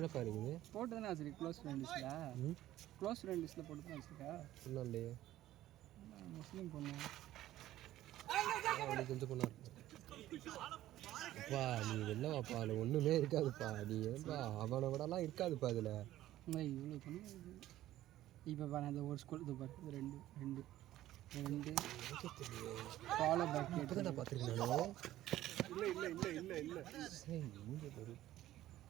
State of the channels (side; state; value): left; quieter; 14.2 dB